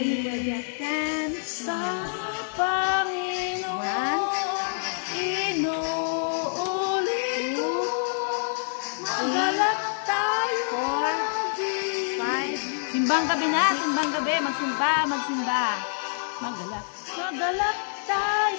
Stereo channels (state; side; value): silent; right; digital silence